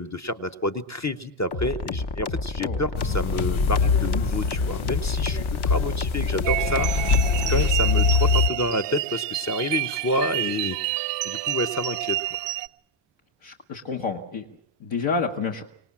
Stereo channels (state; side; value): normal; both; correlation 0.06